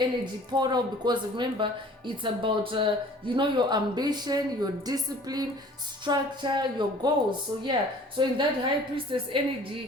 portal, because remember, it's about your ambition, your discipline, structure, your goals. So yeah, so in that high priestess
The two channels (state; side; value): normal; both; correlation 0.49